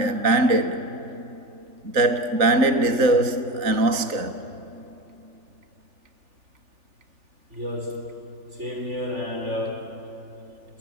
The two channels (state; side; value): late; left; 3.4 ms